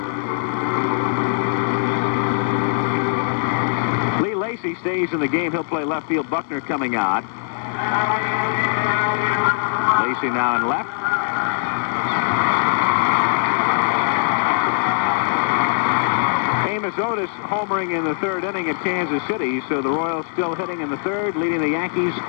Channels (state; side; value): silent; right; 65 dB below the other